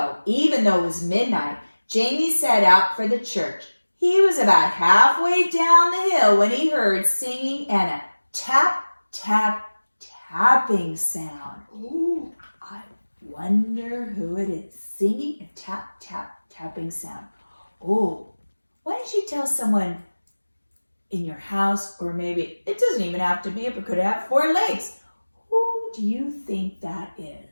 even though it was midnight, Jamie set out for the church. He was about halfway down the hill when he heard singing and a tap, tap, tapping sound. Ooh, I wonder who it is singing a tap, tap, tapping sound. Oh, why don't you tell someone in your house, or maybe it doesn't even have to be, it could have 4 legs. Who do you think that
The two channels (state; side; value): inverted; both; correlation -1.00